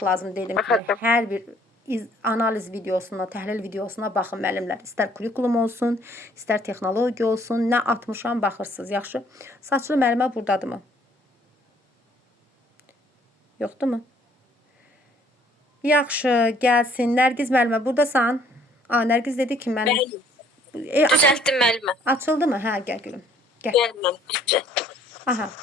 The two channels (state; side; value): normal; both; correlation 0.61